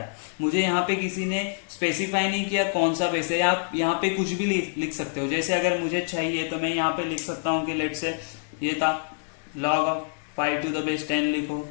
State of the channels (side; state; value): right; silent; digital silence